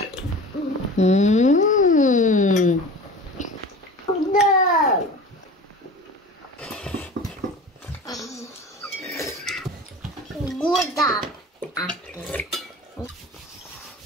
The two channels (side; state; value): both; normal; correlation 0.37